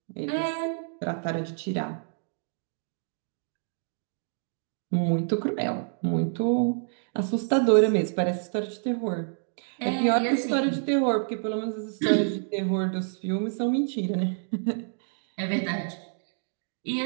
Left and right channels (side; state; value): left; silent; digital silence